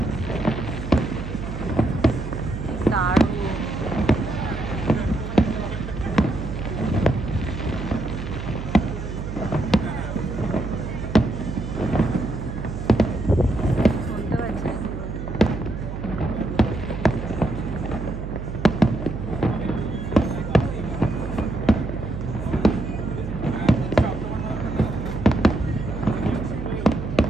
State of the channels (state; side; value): noise; right; hum, 6 dB below the sound